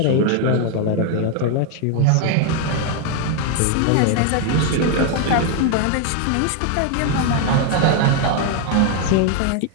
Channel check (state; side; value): different; both; correlation 0.01